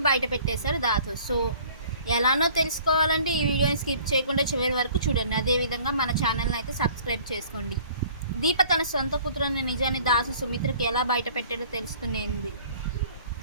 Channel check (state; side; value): inverted; both; correlation -0.52